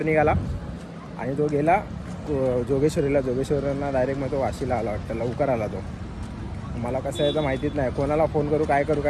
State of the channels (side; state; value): both; identical; correlation 1.00